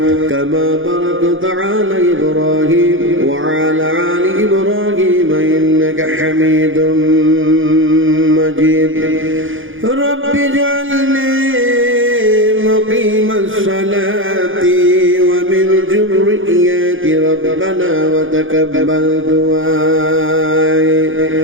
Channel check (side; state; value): left; late; 0.58 ms